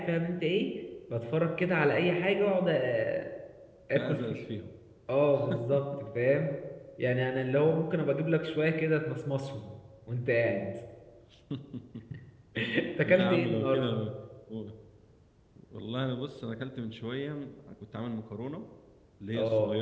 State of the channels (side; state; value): both; identical; correlation 1.00